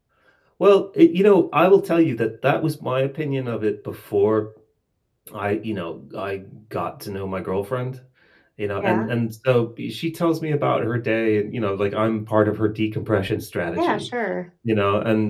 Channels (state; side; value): identical; both; correlation 1.00